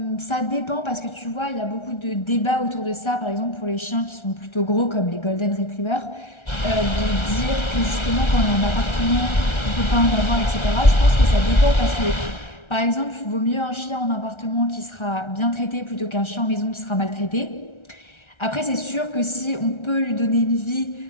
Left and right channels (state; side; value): late; right; 1.3 ms